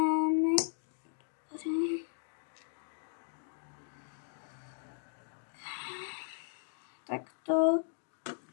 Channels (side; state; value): right; silent; digital silence